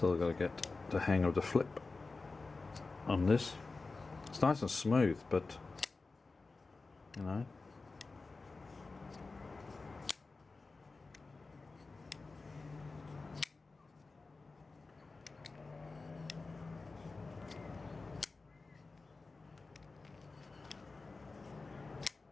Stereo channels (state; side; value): quieter; right; 3.8 dB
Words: got to get the hang of the flip on this. It's nice and smooth, but you know.